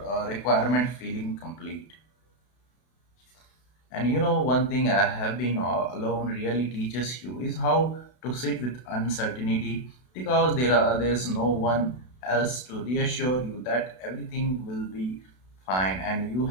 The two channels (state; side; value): late; right; 32 ms